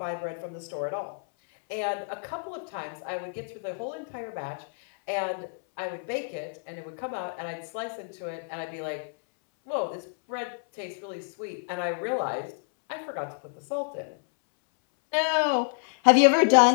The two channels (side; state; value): right; silent; 59 dB below the other